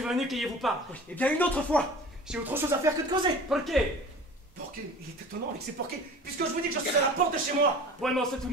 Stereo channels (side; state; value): both; normal; correlation 0.41